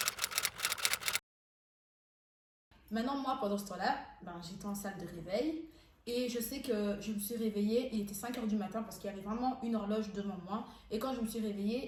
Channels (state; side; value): identical; both; correlation 1.00